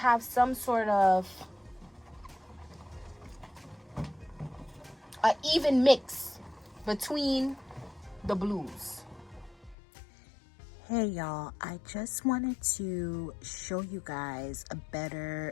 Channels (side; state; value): right; drops out; at 9.8 s